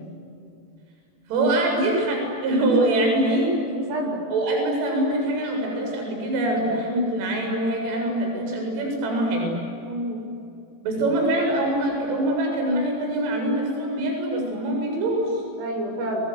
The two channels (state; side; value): late; left; 18 ms